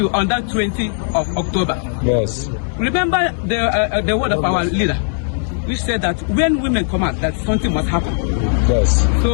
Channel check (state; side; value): silent; right; 67 dB below the other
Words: on that 20th of October. Yes. Remember the word of our leader, which said that when women come out, that something must happen. Yes.